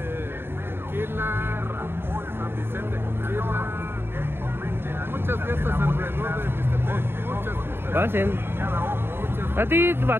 Muchas fiestas alrededor de Mixtepec, muchas fiestas. Pasen. A ti va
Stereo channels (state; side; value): late; left; 0.11 ms